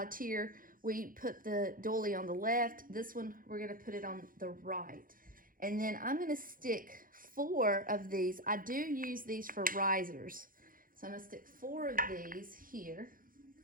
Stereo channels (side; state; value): left; late; 0.40 ms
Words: tier, we put the doily on the left. This one, we're going to put it on the right. And then I'm going to stick 4 of these. I do use these for risers. So I'm going to stick 4 of these here.